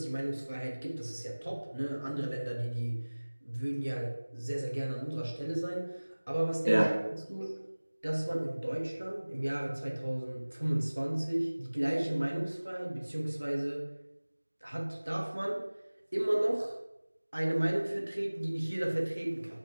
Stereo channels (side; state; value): both; inverted; correlation -1.00